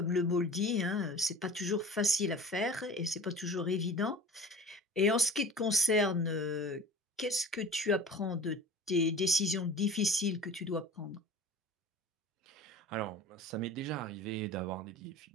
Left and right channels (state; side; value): normal; both; correlation 0.40